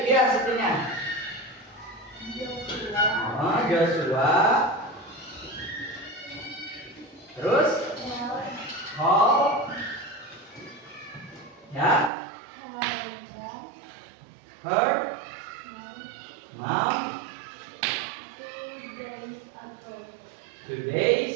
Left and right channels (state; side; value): drops out; left; at 12.1 s